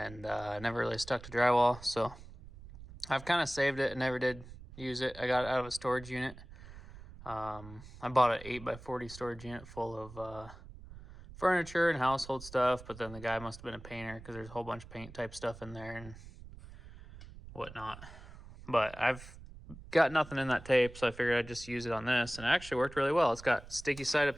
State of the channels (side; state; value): right; noise; rumble, 16 dB below the sound